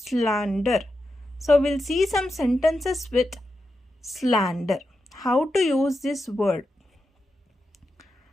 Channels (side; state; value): both; normal; correlation 0.88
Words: Slander. So will see some sentences with slander. How to use this word